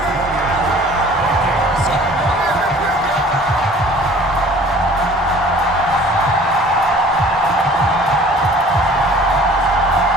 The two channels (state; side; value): normal; both; correlation 0.49